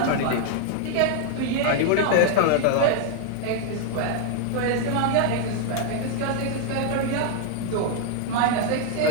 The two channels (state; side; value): different; both; correlation 0.00